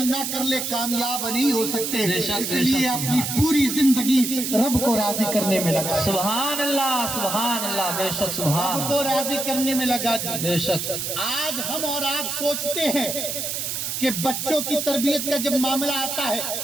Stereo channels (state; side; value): noise; right; hiss, 3 dB below the sound